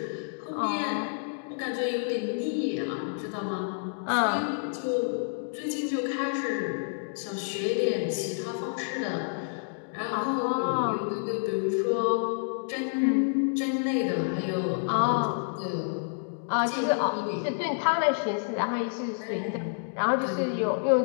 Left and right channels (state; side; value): silent; right; digital silence